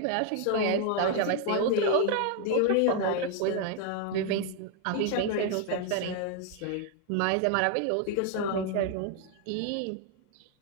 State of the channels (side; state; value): both; different; correlation 0.00